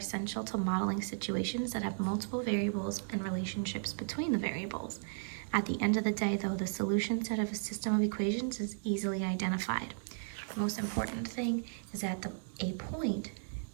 to modeling situations that have multiple variables and relationships between the variables. At the end of the day, though, the solution set of a system of equations is easily identified. The most important thing is that a point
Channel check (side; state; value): left; silent; digital silence